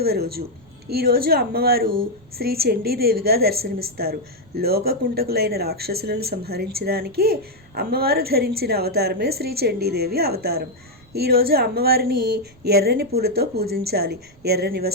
రోజు. ఈరోజు అమ్మవారు శ్రీ చండీదేవిగా దర్శనమిస్తారు. లోకకుంటకులైన రాక్షసులను సంహరించడానికి అమ్మవారు ధరించిన అవతారమే శ్రీ చండీదేవి అవతారం. ఈరోజు అమ్మవారిని ఎర్రని పూలతో పూజించాలి. ఎర్రని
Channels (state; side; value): noise; right; rumble, 27 dB below the sound